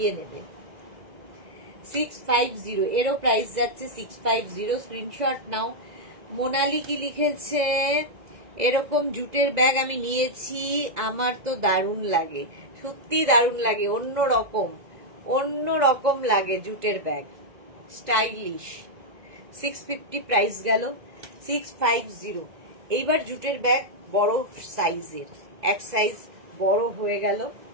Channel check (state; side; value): late; left; 2.0 ms